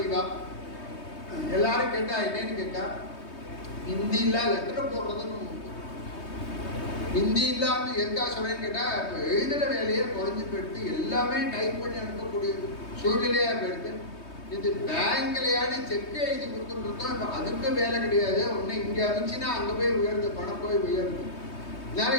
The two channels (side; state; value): right; late; 3.2 ms